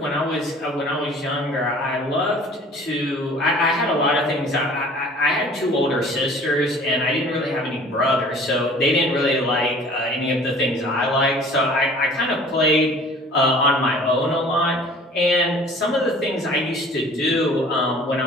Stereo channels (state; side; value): normal; both; correlation 0.48